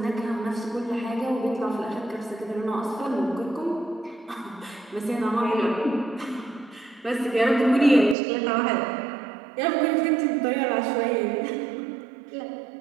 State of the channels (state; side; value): drops out; left; at 8.2 s